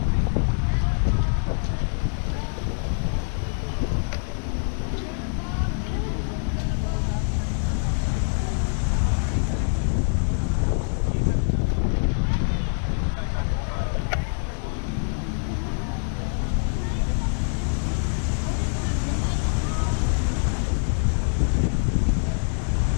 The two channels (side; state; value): right; silent; 59 dB below the other